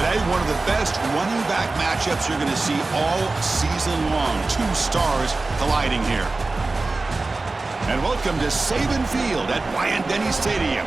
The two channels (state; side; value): quieter; left; 3.4 dB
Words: one of the best running back matchups you're going to see all season long. Two stars colliding here. And welcome to Saban Field at Dynasty